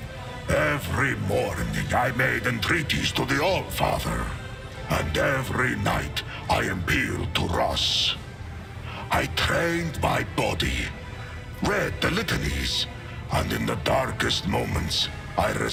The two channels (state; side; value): identical; both; correlation 1.00